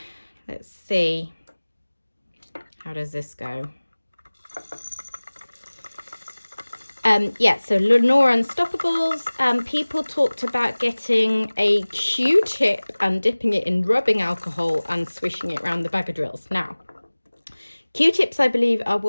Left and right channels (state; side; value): inverted; both; correlation -1.00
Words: let's see. How does this go? Yeah, so Lenore Unstoppables, people talked about getting a Q-tip and dipping it in rubbing alcohol and swishing it around the bag of drills. Now, Q-tips, I believe, are